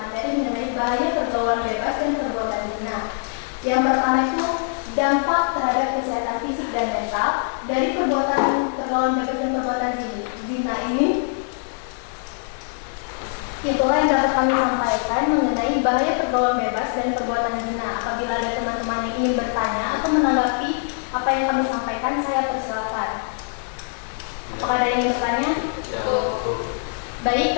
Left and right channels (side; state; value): right; silent; 63 dB below the other